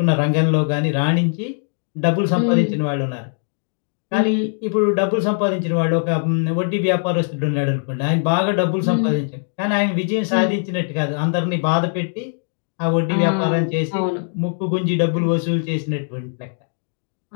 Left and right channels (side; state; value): right; silent; 65 dB below the other